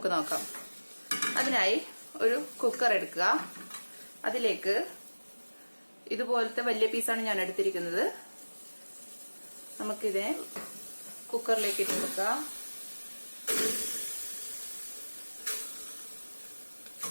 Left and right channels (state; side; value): inverted; both; correlation -1.00